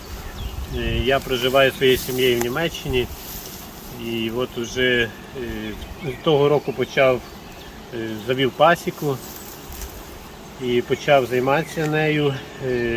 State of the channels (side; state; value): both; identical; correlation 1.00